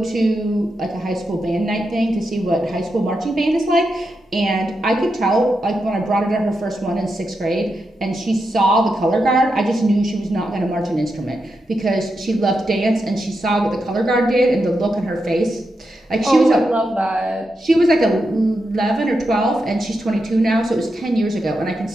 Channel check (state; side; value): normal; both; correlation 0.86